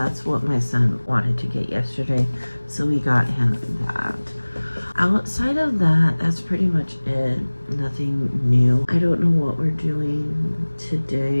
what my son wanted to get yesterday, so we got him that. Outside of that, that's pretty much it. Nothing new. I don't know what we're doing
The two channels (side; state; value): both; inverted; correlation -1.00